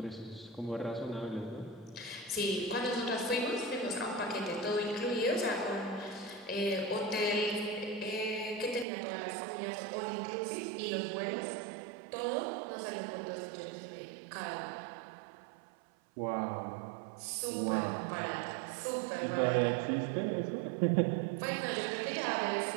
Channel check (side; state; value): left; drops out; at 8.8 s